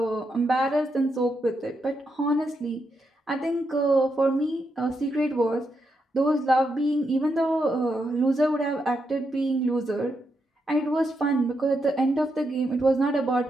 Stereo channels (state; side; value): normal; both; correlation 0.82